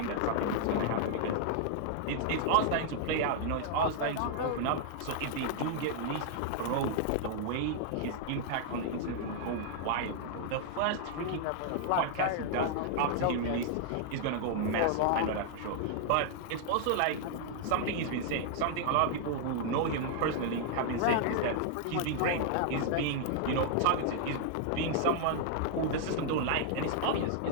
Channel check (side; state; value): both; different; correlation -0.01